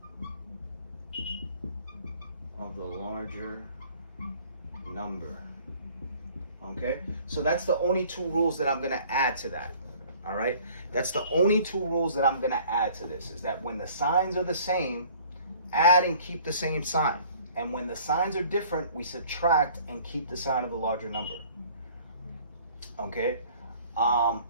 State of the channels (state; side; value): inverted; both; correlation -0.53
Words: Of the larger number. Okay? So that's the only two rules that I'm going to add to that. All right? That's the only two rules that I'm going to add to this, is that when the signs are the same, add and keep the same sign. And when the signs are different, we subtract and keep the sign of the larger number. Okay?